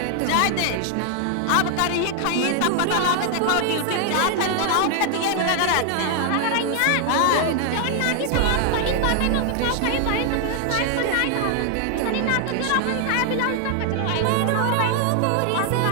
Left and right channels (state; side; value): different; both; correlation 0.00